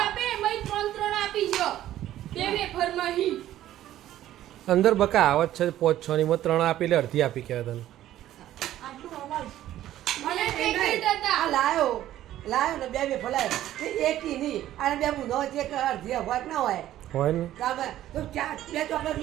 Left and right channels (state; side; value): quieter; left; 13.1 dB